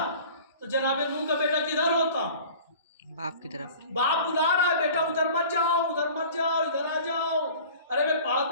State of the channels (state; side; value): inverted; both; correlation -0.43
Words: तो जनाबे नूह का बेटा किधर होता? बाप की तरफ। बाप बुला रहा है, बेटा उधर मत जाओ, उधर मत जाओ, इधर आ जाओ। अरे मैं पहाड़